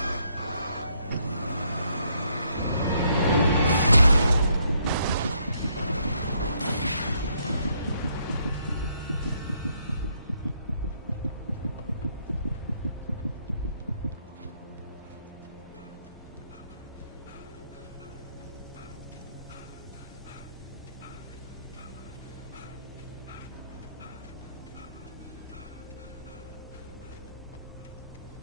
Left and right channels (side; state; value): both; inverted; correlation -0.72